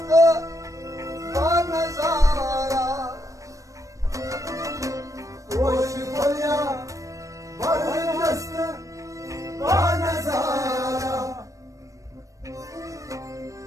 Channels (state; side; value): late; left; 0.16 ms